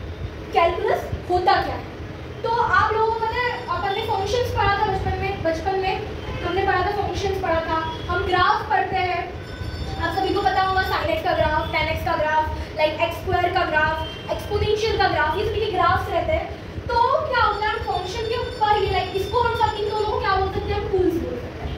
कैलकुलस होता क्या है। तो आप लोगों को पता है अपन ने फंक्शंस पढ़ा था बचपन में हमने पढ़ा था, फंक्शंस पढ़ा था। हम ग्राफ पढ़ते हैं, आप सभी को पता होगा sin x का ग्राफ, tan x का ग्राफ, लाइक x स्क्वायर का ग्राफ, एक्सपोनेंशियल का ग्राफ, ये सभी के ग्राफ्स रहते हैं। तो क्या होता है फंक्शन के ऊपर ये लाइक इसको हम सब इन दोनों को क्या बोल सकते हैं, हम टूल्स बोल सकते हैं।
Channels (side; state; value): both; identical; correlation 1.00